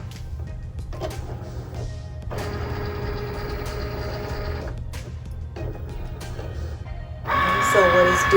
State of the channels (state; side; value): identical; both; correlation 1.00